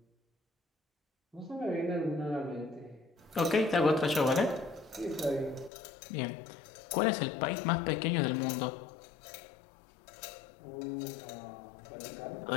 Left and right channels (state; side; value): drops out; right; at 5.7 s